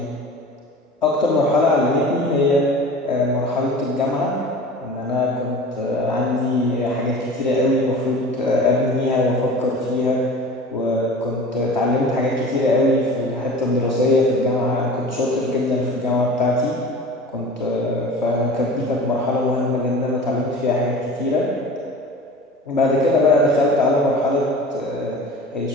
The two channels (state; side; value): normal; both; correlation 0.39